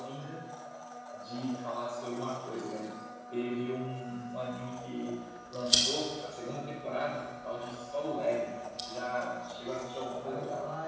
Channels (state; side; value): identical; both; correlation 1.00